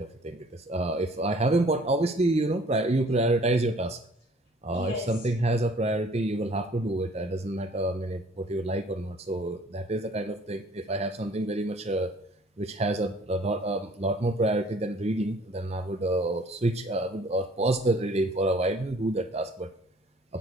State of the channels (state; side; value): normal; both; correlation 0.55